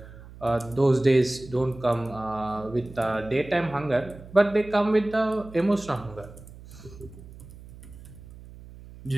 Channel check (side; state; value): right; noise; hum, 18 dB below the sound